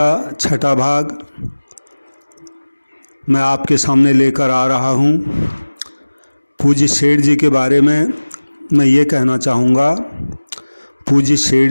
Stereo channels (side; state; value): both; inverted; correlation -1.00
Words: छठा भाग मैं आपके सामने लेकर आ रहा हूँ। पूज्य सेठ जी के बारे में मैं ये कहना चाहूँगा। पूज्य